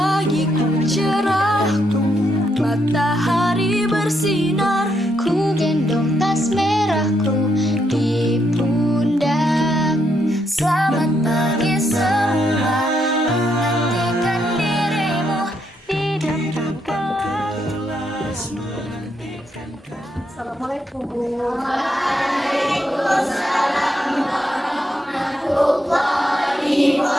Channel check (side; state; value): both; normal; correlation 0.78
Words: cerah, matahari bersinar, ku gendong tas merahku di pundak. Selamat pagi semua, menantikan dirimu di depan kelas. Assalamualaikum. Waalaikumsalam warahmatullahi